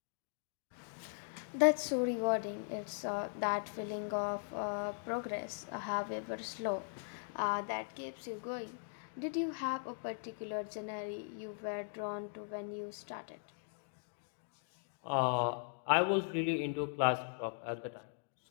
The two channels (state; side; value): silent; right; digital silence